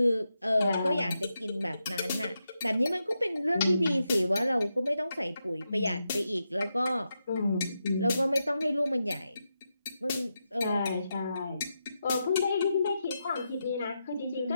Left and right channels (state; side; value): inverted; both; correlation -0.86